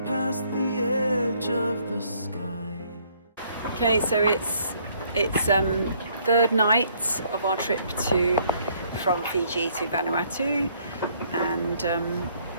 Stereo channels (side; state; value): both; inverted; correlation -0.65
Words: past the edge of the sky. Okay, so it's third night of our trip from Fiji to Vanuatu, and